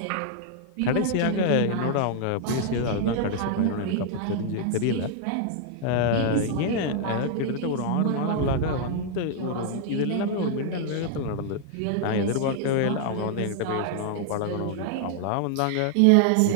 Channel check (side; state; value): both; different; correlation 0.00